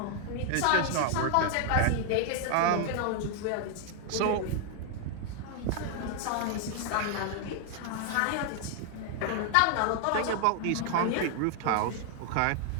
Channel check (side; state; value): both; different; correlation 0.00